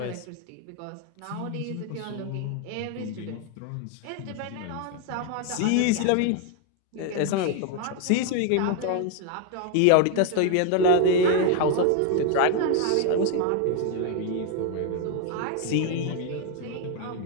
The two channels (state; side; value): different; both; correlation 0.01